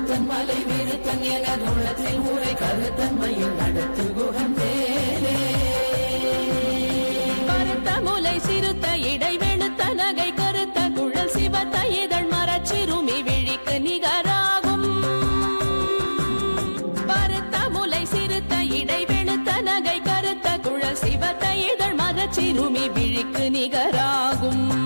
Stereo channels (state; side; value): inverted; both; correlation -1.00